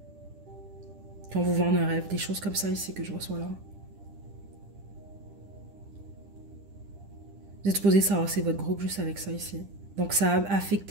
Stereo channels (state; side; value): late; left; 10 ms